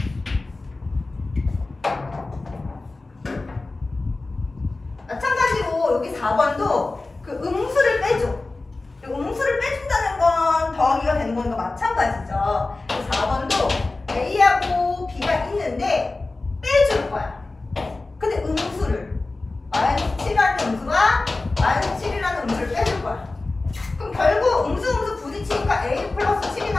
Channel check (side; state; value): right; quieter; 3.3 dB